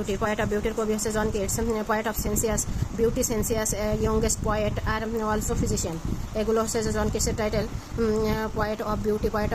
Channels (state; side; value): identical; both; correlation 1.00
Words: বিউটির কবি হচ্ছে John Keats. Poet of sensuous youngest poet আর অলসো ফিজিশিয়ান, এগুলো হচ্ছে যে জন কেটসের টাইটেল। Poet of beauty, poet